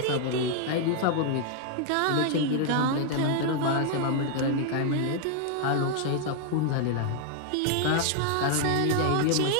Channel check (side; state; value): both; different; correlation 0.00